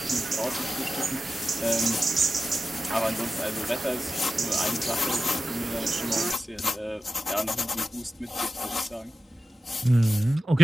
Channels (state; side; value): normal; both; correlation 0.93